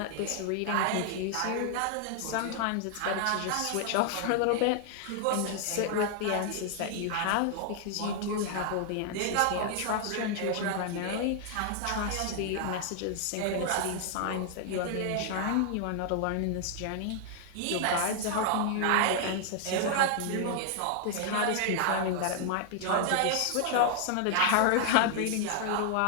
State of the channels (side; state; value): both; different; correlation 0.00